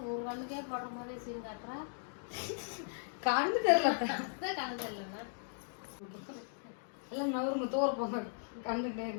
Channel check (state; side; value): silent; right; digital silence